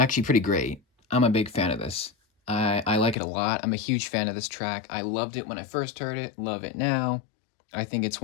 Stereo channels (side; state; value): right; drops out; at 3.2 s